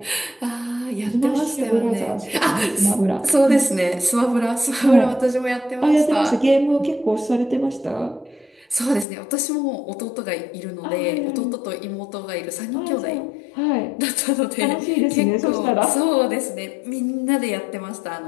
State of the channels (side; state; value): right; drops out; at 9.1 s